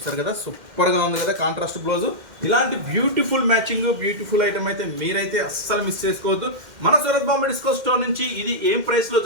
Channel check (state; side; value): late; left; 2.1 ms